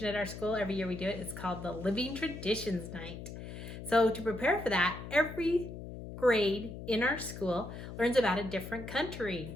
at our school. Every year we do it. It's called the Living Traditions Night. So to prepare for that, every grade in our school learns about a different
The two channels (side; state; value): left; noise; hum, 10 dB below the sound